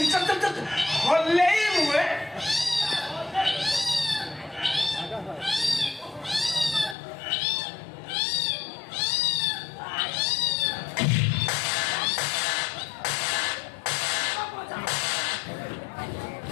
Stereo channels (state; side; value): drops out; right; at 7.0 s